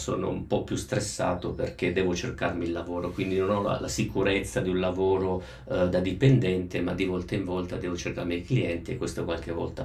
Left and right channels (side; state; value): both; identical; correlation 1.00